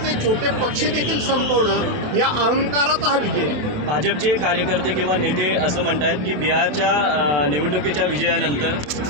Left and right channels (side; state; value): left; late; 27 ms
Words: छोटे पक्ष देखील संपवणं या अहंकाराचा हा विजय आहे। भाजपचे कार्यकर्ते किंवा नेते असं म्हणतात की बिहारच्या निवडणुकीच्या